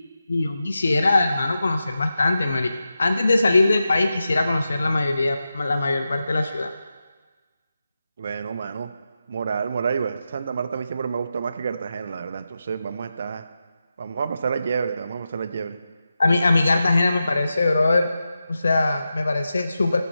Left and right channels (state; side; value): inverted; both; correlation -0.90